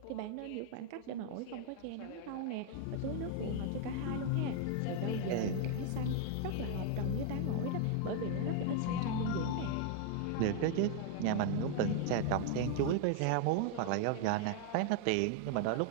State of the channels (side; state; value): both; different; correlation 0.00